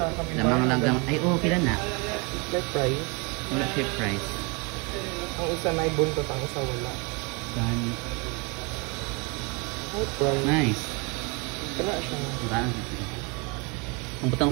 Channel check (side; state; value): left; quieter; 31.0 dB